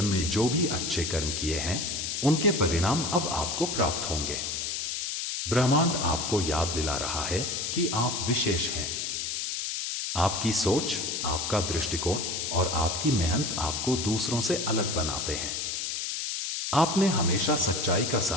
में जो भी अच्छे कर्म किए हैं, उनके परिणाम अब आपको प्राप्त होंगे। ब्रह्मांड आपको याद दिला रहा है कि आप विशेष हैं। आपकी सोच, आपका दृष्टिकोण और आपकी मेहनत आपको दूसरों से अलग बनाते हैं। आपने हमेशा सच्चाई का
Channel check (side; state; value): left; noise; hiss, 2 dB below the sound